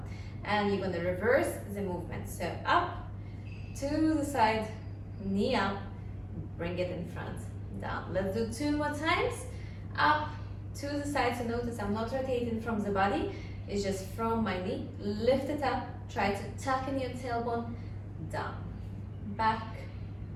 And you're going to reverse the movement. So up, to the side, knee up, bring it in front, down. Let's do 2 more times. Up, to the side. So notice I'm not rotating from the body. It's just from my knee. Lift it up. Try to tuck in your tailbone. Down. Back.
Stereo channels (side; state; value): both; identical; correlation 1.00